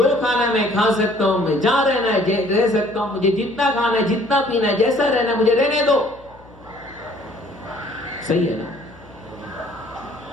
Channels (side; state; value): left; noise; hum, 24 dB below the sound